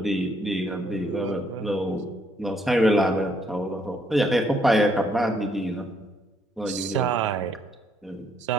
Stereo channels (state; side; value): normal; both; correlation 0.70